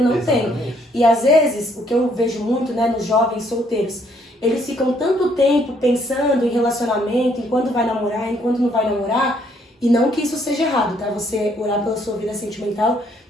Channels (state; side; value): normal; both; correlation 0.68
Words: não tem. E às vezes, o que eu vejo muito, né, nos jovens solteiros, eles ficam tanto tempo pensando em relacionamento, em quando vai namorar, em quando não vai namorar, e não que isso seja errado, tá? Você orar pela sua vida sentimental